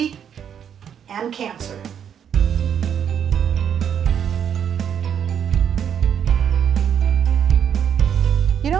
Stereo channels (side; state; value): left; quieter; 8.5 dB